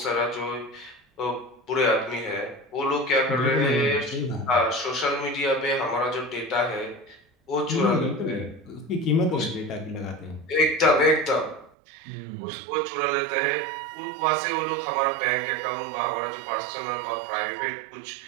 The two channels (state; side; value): drops out; left; at 11.7 s